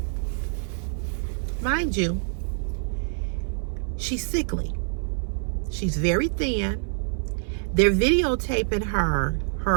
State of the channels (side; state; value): left; silent; 61 dB below the other